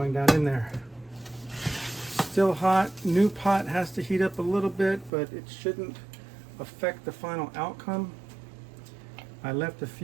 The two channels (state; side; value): drops out; left; at 5.1 s